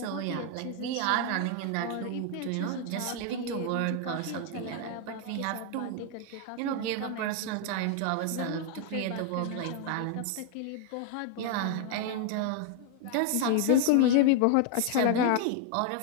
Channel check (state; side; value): different; both; correlation 0.00